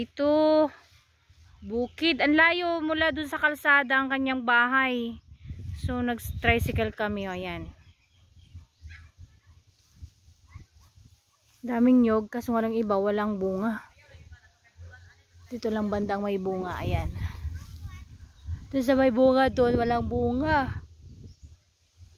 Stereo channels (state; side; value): identical; both; correlation 1.00